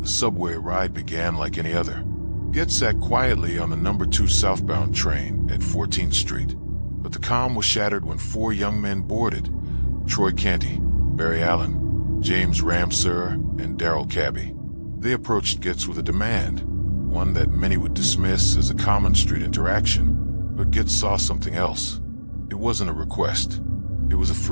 subway ride began like any other. Goetz sat quietly on the number 2 southbound train at 14th Street, but the calm was shattered when 4 young men boarded: Troy Canty, Barry Allen, James Ramseur, and Darrell Cabby. They approached Goetz with a demand, one that many would dismiss as a common street interaction. But Goetz saw something else. It wasn't a request. It was a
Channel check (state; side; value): inverted; both; correlation -1.00